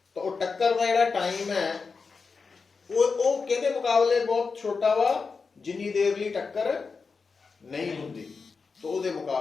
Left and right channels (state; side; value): quieter; right; 4.8 dB